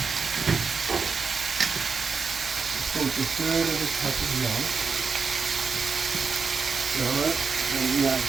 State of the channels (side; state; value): left; quieter; 5.2 dB